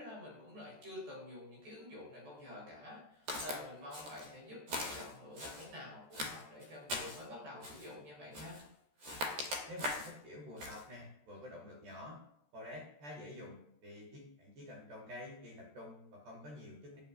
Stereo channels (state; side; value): late; left; 13 ms